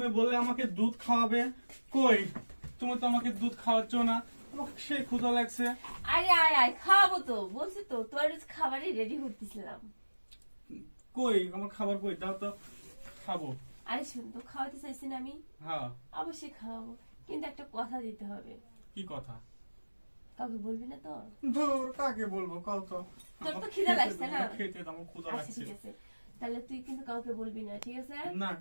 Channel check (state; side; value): inverted; both; correlation -1.00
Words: বললে আমাকে দুধ খাওয়াবে, কই তুমি তো আমাকে দুধ খাওয়াচ্ছ না, আমাকে সেই ক্ষুধা লাগছে। আরে আয় আয় খাওয়াবো তো, বলছি তো তোর খাবারই রেডি করতেছিলাম। কই আমার খাবার কই, দাও তো খাবো। আরে শুন তো, খাওয়াতে চাইছি না আমি? হ্যাঁ অবশ্যই খাওয়াবো, কিন্তু একটা কথা দিতে হবে। কি কথা? কাউকে বলবি না তো? ধুর কাকে বলবো কও তো। তোর তো খিদে লাগছে না? খেতে দাও, আমার ক্ষুধা আচ্ছা লাগছে। ঠিক আছে, তাহলে তুই কিন্তু কাউকে বলবি না, ঠিক আছে? না